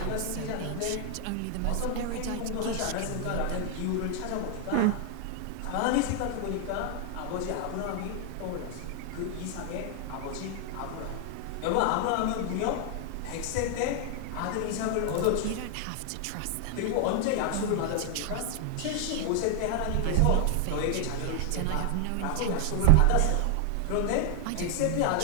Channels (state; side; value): different; both; correlation 0.00